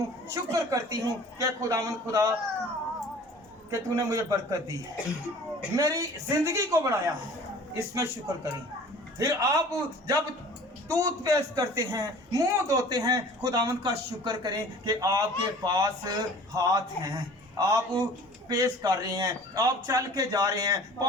शुक्र करती हूँ कि खुदावंद खुदा कि तूने मुझे बरकत दी है, मेरी जिंदगी को बढ़ाया, इसमें शुक्र करें। फिर आप जब टूथपेस्ट करते हैं, मुंह धोते हैं, खुदावंद का शुक्र करें कि आपके पास हाथ हैं, आप पेश कर रहे हैं, आप चल के जा रहे हैं,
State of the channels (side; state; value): both; normal; correlation 0.46